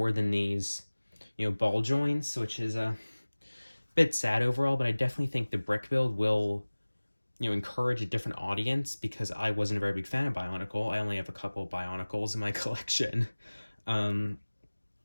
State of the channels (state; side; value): inverted; both; correlation -1.00